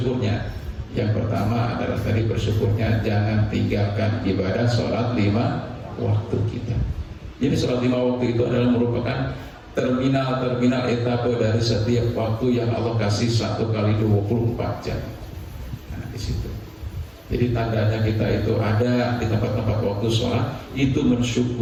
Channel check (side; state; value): both; identical; correlation 1.00